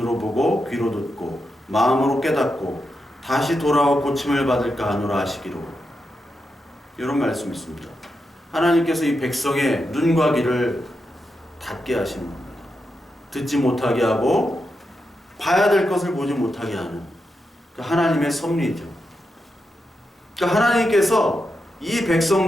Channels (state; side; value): normal; both; correlation 0.86